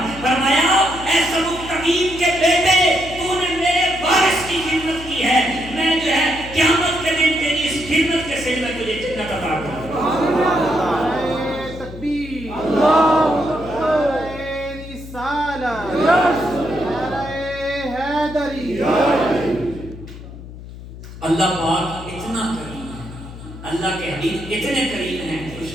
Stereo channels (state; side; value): noise; left; hum, 14 dB below the sound